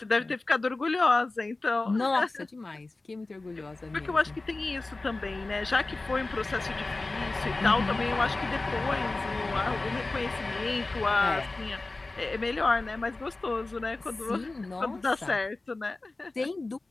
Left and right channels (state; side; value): quieter; right; 3.2 dB